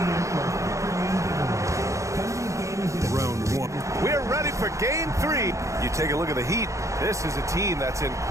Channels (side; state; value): left; late; 0.15 ms